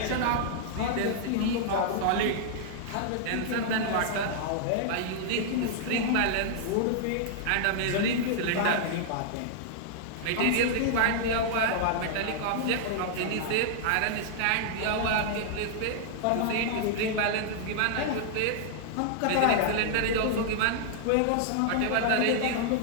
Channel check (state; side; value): different; both; correlation -0.01